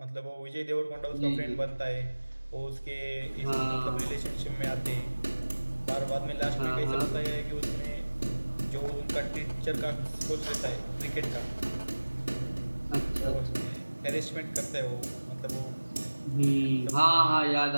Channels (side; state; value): both; inverted; correlation -1.00